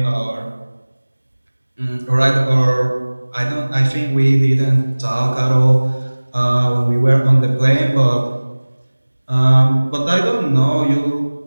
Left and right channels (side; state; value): both; inverted; correlation -1.00